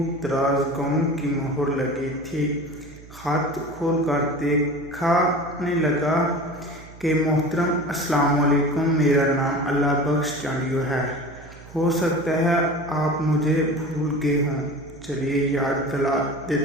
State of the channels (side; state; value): right; noise; hum, 19 dB below the sound